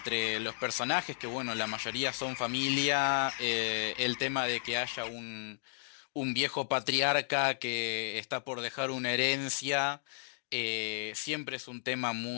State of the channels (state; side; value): silent; right; digital silence